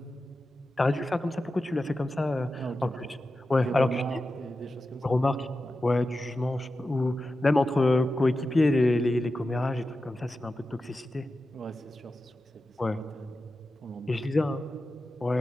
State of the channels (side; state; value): both; normal; correlation 0.92